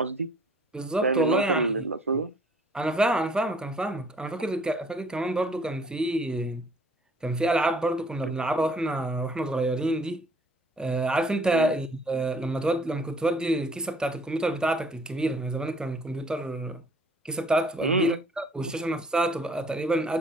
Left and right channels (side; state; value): both; normal; correlation 0.58